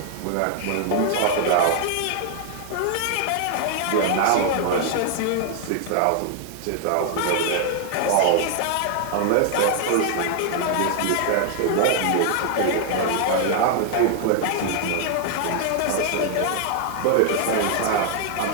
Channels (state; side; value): different; both; correlation 0.00